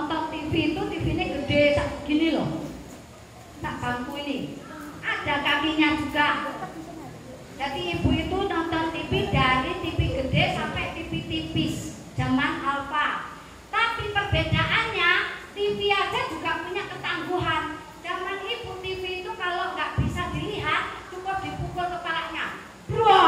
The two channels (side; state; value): both; identical; correlation 1.00